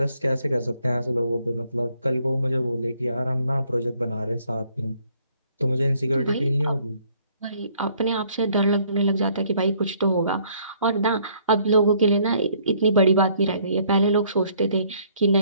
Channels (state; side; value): inverted; both; correlation -0.64